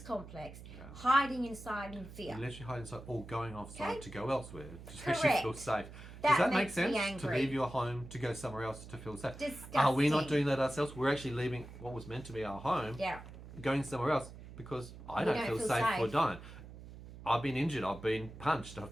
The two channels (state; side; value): noise; right; hum, 15 dB below the sound